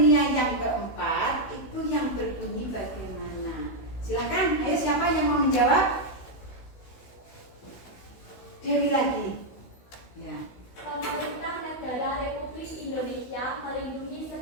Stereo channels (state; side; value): late; right; 16 ms